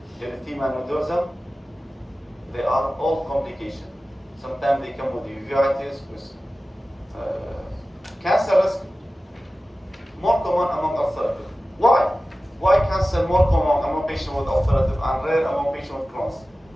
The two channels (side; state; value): both; normal; correlation 0.95